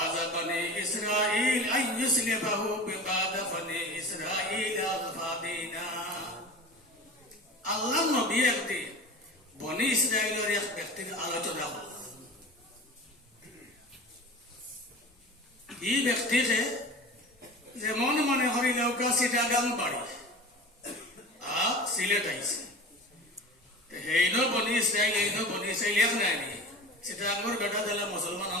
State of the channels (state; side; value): normal; both; correlation 0.35